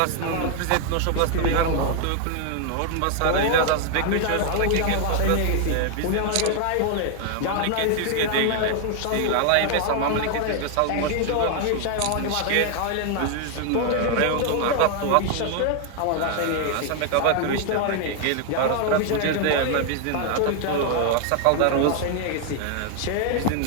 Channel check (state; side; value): different; both; correlation 0.00